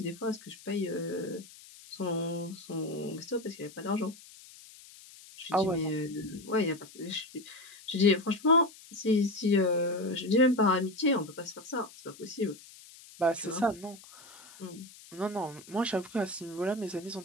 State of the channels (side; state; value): left; noise; hiss, 20 dB below the sound